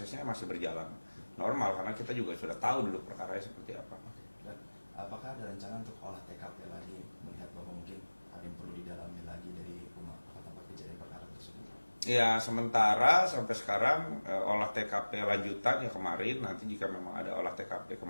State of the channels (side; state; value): both; inverted; correlation -1.00